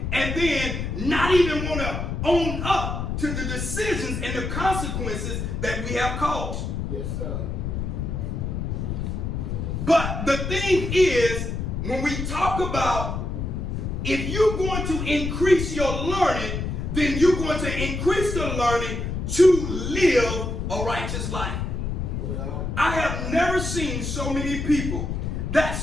and then not even want to own up to the decisions and the consequences that we have caused. Yes, sir. But the thing is, when we talk about if you're going to increase your learning, then you're going to increase the learning to live a righteous life. Well, I have never seen so many people that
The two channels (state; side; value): noise; left; rumble, 3 dB below the sound